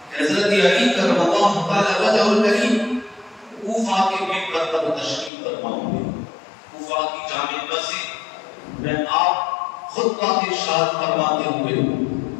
کہ حضرت علی کرم اللہ تعالی وجہ الکریم کوفہ کے منبر پر تشریف فرما ہوئے، کوفہ کی جامع مسجد میں آپ خطبہ ارشاد فرماتے ہوئے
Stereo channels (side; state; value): right; drops out; at 5.3 s